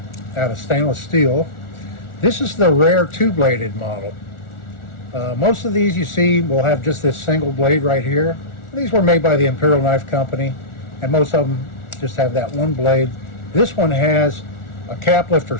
out of stainless steel. This is the rare two-bladed model. Most of these you see will have just this single blade right here. These were made by the Imperial Knife Company, and most of them just have that one blade. This one has a cap lifter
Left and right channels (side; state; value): right; late; 1.4 ms